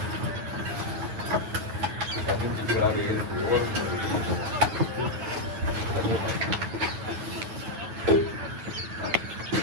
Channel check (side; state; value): left; late; 9.5 ms